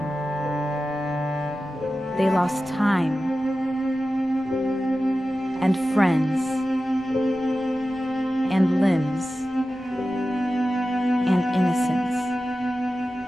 They lost time and friends and limbs and innocence.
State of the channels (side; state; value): both; normal; correlation 0.94